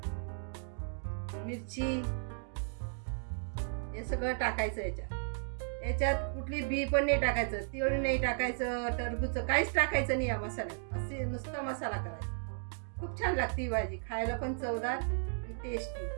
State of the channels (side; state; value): left; silent; digital silence